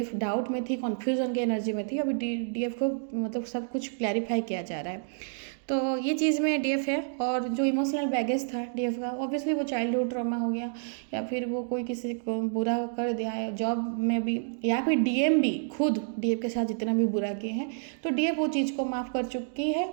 डाउट में थी, कन्फ्यूजन की एनर्जी में थी, अभी डीएफ को मतलब सब कुछ क्लैरिफाई किया जा रहा है। तो ये चीज़ में डीएफ है। और जो इमोशनल बैगेज था डीएफ का, ऑब्वियसली वो चाइल्डहुड ट्रॉमा हो गया या फिर वो कोई किसी को बुरा कर दिया है जॉब में भी, या फिर डीएम भी खुद डीएफ के साथ जितना भी बुरा किए हैं, तो डीएफ वो चीज़ को माफ़ कर चुकी है।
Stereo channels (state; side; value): silent; left; digital silence